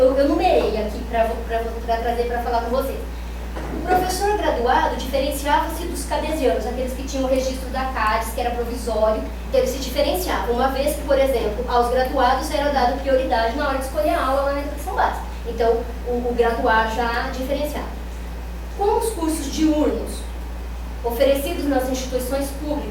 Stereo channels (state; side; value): identical; both; correlation 1.00